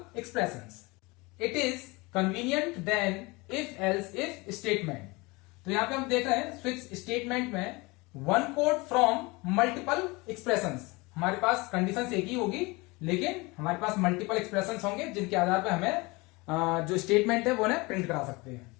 expressions. It is convenient then if else if statement. तो यहां पे हम देख रहे हैं स्विच स्टेटमेंट में one code from multiple expressions. हमारे पास कंडीशन एक ही होगी, लेकिन हमारे पास मल्टीपल एक्सप्रेशंस होंगे जिनके आधार पर हमें जो स्टेटमेंट है वो उन्हें प्रिंट करा सकते हैं।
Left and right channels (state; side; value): quieter; right; 24.7 dB